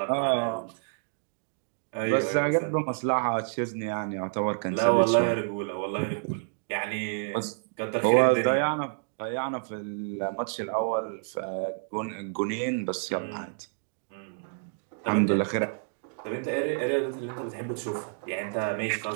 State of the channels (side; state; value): left; silent; digital silence